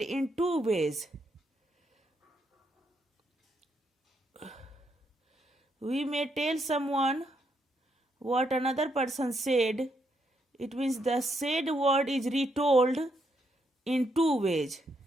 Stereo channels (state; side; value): normal; both; correlation 0.77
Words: in two ways. We may tell someone what another person said. It means the said word is retold in two ways.